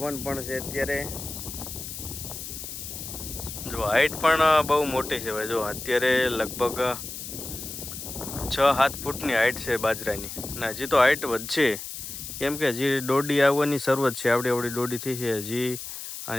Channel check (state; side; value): noise; left; hiss, 9 dB below the sound